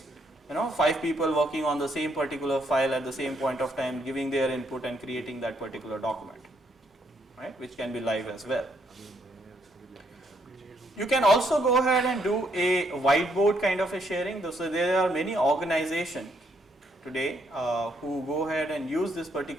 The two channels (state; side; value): normal; both; correlation 0.73